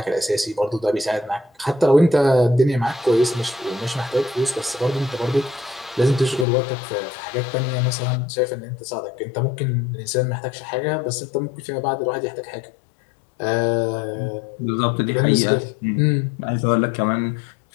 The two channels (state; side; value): drops out; right; at 6.5 s